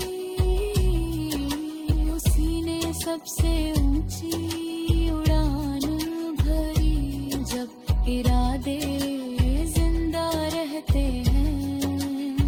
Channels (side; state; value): both; identical; correlation 1.00